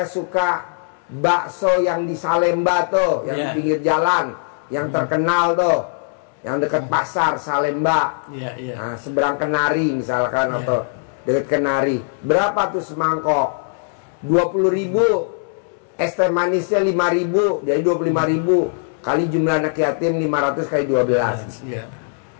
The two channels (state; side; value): silent; right; 66 dB below the other